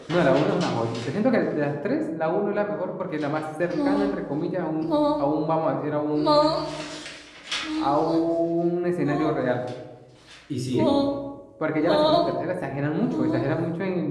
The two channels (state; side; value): identical; both; correlation 1.00